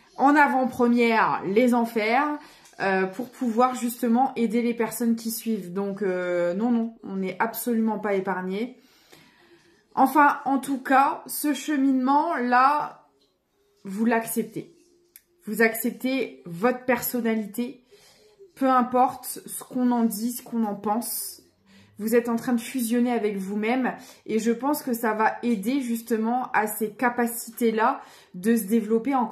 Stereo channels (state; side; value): identical; both; correlation 1.00